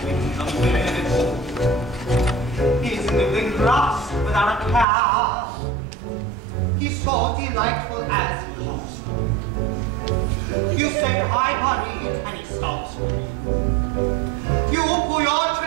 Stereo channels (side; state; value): left; drops out; at 4.9 s